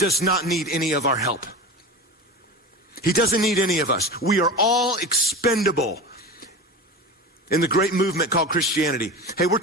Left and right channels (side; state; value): both; normal; correlation 0.29